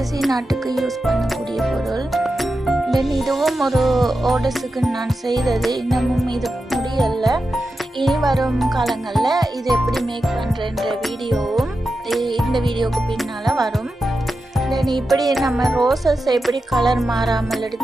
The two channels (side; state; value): both; normal; correlation 0.90